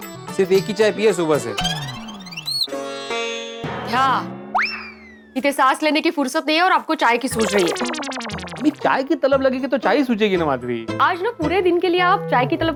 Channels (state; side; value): identical; both; correlation 1.00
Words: सिर्फ एक ही चाय पिए सुबह से। हाँ, इतने सांस लेने की फुर्सत नहीं है और आपको चाय की सूझ रही है। अभी चाय की तलब लगेगी तो चाय ही सूझेगी ना माधवी। आज ना पूरे दिन के लिए आप चाय की